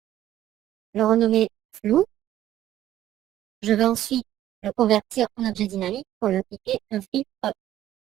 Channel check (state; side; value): quieter; left; 12.9 dB